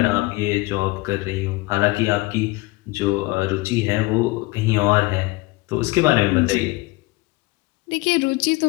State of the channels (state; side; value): quieter; right; 22.6 dB